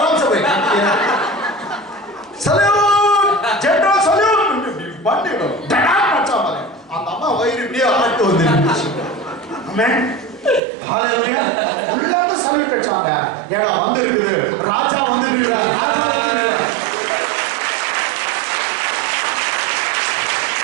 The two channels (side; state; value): left; drops out; at 10.6 s